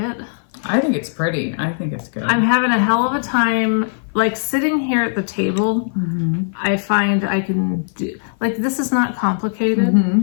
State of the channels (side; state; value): right; silent; 56 dB below the other